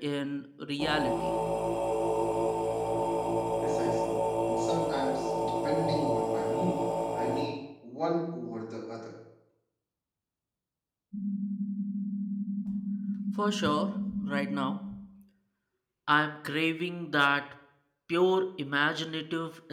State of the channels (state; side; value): identical; both; correlation 1.00